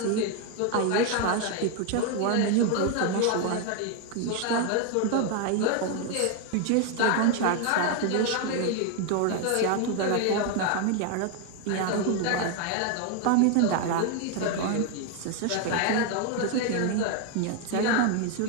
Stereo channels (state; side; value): different; both; correlation 0.01